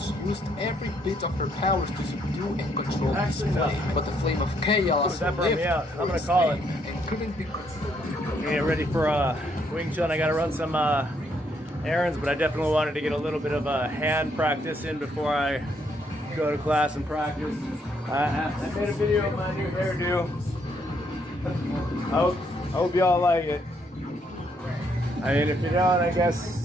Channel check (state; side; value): normal; both; correlation 0.72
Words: used every bit of her powers to subdue and control this flame, but the Flame of Chaos lived I'm gonna call it and couldn't be controlled. Get ready for Wing Chun. I gotta run some errands, but I definitely wanted to get a little bit of hand practice in before I go to class and practice. I made a video of my new hairdo. I hope y'all like it. I mean, if you don't, I